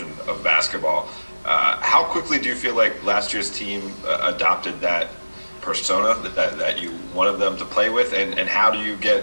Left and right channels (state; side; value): inverted; both; correlation -1.00